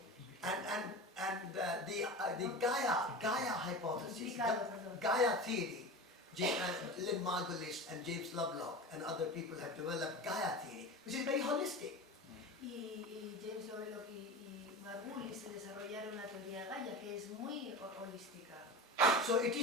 And the Gaia hypothesis, Perdón. Gaia theory, Lynn Margulis and James Lovelock and other people have developed Gaia theory, which is very holistic. Y James Lovelock y Margulis se desarrollaron la teoría Gaia, que es muy holística. So it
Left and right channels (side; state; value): both; normal; correlation 0.29